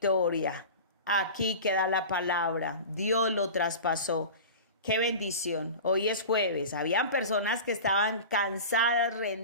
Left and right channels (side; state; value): both; inverted; correlation -0.33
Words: Aquí queda la palabra. Dios lo traspasó. Qué bendición. Hoy es jueves. Habían personas que estaban cansadas,